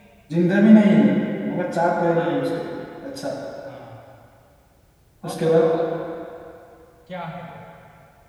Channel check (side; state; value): both; identical; correlation 1.00